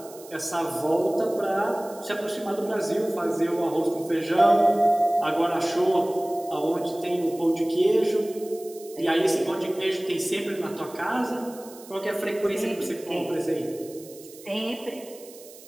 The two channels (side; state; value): right; noise; hiss, 20 dB below the sound